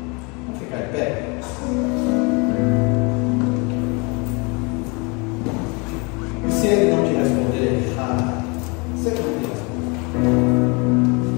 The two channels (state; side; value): quieter; right; 29.9 dB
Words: Vamos ficar em pé? E se Ele não te responder, se Ele não te responder,